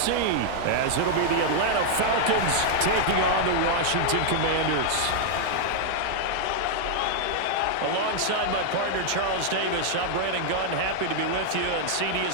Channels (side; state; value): both; different; correlation -0.01